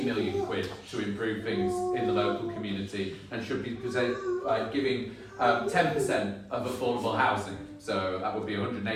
million quid to improve things in the local community and should be giving 10% of affordable housing. So that would be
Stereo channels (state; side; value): identical; both; correlation 1.00